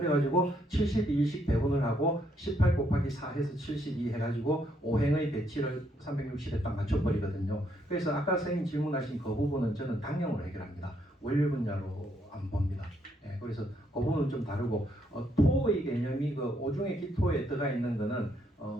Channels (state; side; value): normal; both; correlation 0.73